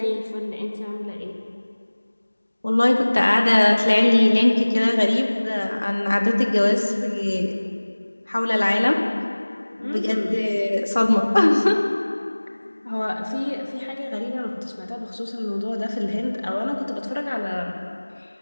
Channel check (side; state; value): both; inverted; correlation -1.00